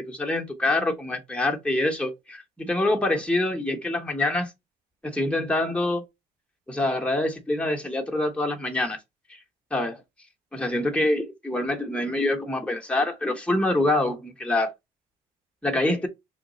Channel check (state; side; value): normal; both; correlation 0.75